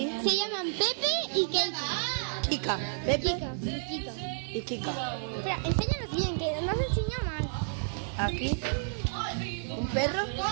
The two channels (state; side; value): silent; left; digital silence